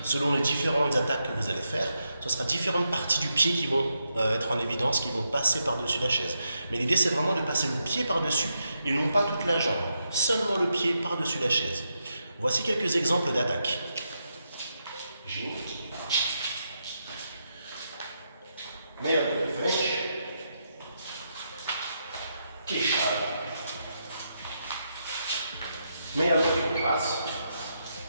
Selon les différentes attaques que vous allez faire, ce sera différentes parties du pied qui vont être en évidence, qui vont passer par-dessus la chaise. Mais l'idée, c'est vraiment de passer le pied par-dessus et non pas toute la jambe. Seulement le pied par-dessus la chaise. Voici quelques exemples d'attaques. Meia de frente, queixada, meia de passo,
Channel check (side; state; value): both; inverted; correlation -0.82